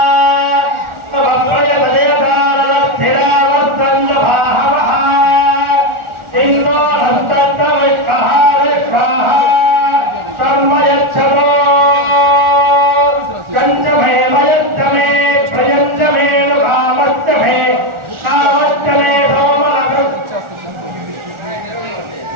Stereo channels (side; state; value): left; late; 1.4 ms